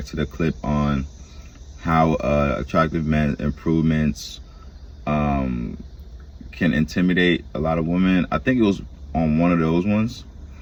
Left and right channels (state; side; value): identical; both; correlation 1.00